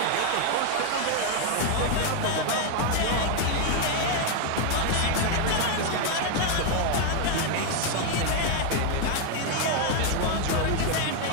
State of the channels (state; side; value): different; both; correlation 0.01